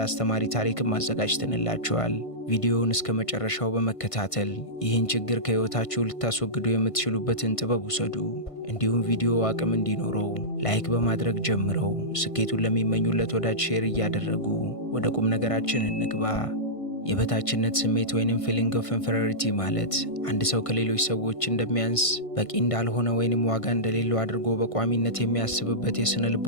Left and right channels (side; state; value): right; late; 1.5 ms